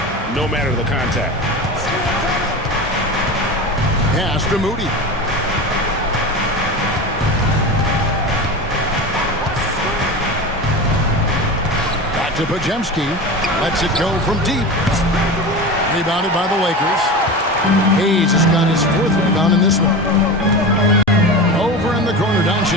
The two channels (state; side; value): normal; both; correlation 0.27